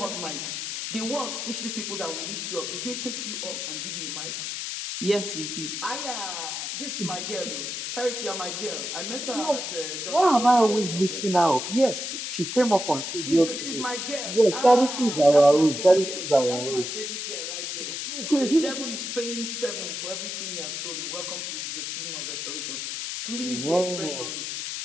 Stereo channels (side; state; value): left; noise; hiss, 4 dB below the sound